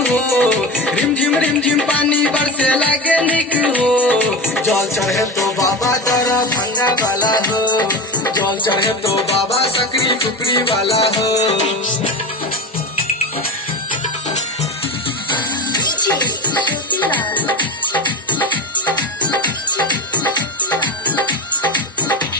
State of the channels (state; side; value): normal; both; correlation 0.23